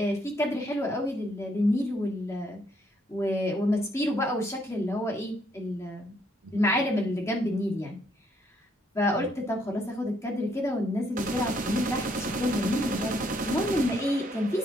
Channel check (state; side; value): normal; both; correlation 0.71